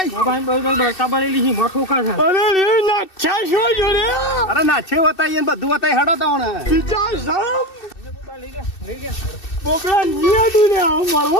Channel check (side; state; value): right; late; 2.6 ms